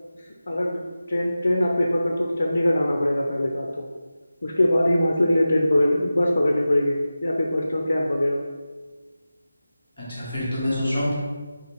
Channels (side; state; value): both; inverted; correlation -0.95